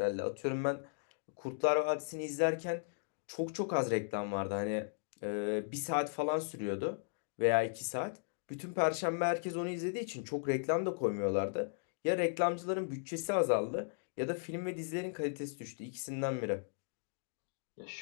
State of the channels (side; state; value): right; silent; digital silence